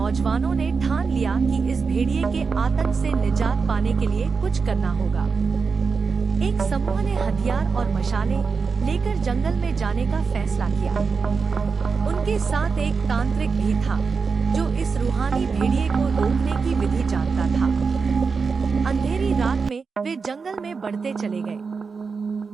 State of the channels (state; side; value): quieter; left; 5.1 dB